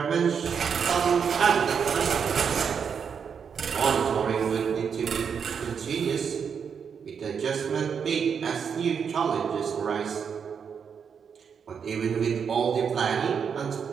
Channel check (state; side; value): quieter; left; 6.8 dB